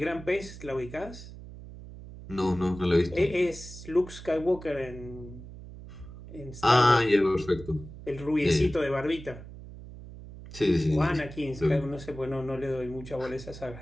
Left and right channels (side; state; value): right; noise; hum, 14 dB below the sound